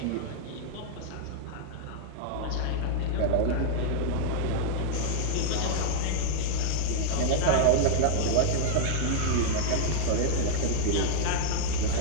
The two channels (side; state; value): both; different; correlation -0.01